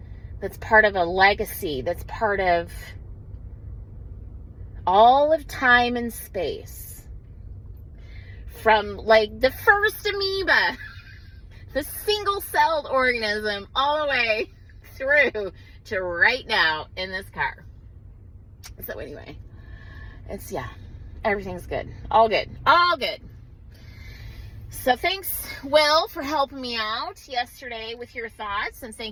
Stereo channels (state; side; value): identical; both; correlation 1.00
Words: that's part of a legacy, that's part of all of time and space. From like the first amoeba, the single-celled organism, all the way through to right now in this car. So anyway, everything's good. All good. So thanks, Will, for helping me out yesterday with your thoughts. And